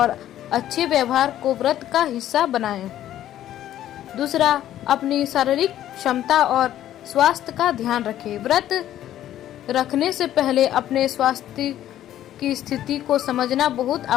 अच्छे व्यवहार को व्रत का हिस्सा बनाएं। दूसरा, अपनी शारीरिक क्षमता और स्वास्थ्य का ध्यान रखें। व्रत रखने से पहले अपने स्वास्थ्य की स्थिति को समझना बहुत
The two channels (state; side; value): quieter; right; 12.3 dB